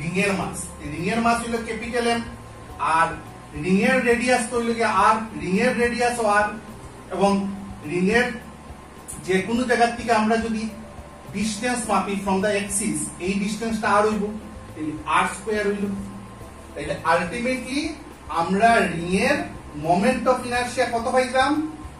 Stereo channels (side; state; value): both; identical; correlation 1.00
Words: রিং এর মাস হইল ক্যাপিটাল এম আর রিং এর রেডিয়াস তো হইল কি আর রিং এর রেডিয়াস আর এবং রিং এর যে কোনো জায়গা থেকে আমরা যদি ডিসটেন্স মাপি ফ্রম দা এক্সিস এই ডিসটেন্সটা আর হইব তাহলে আর স্কয়ার হইল তাহলে আলটিমেটলি আমরা রিং এর মোমেন্ট অফ ইনারশিয়া কত পাইলাম